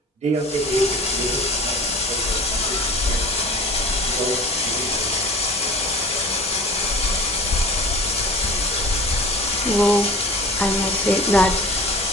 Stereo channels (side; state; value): both; normal; correlation 0.39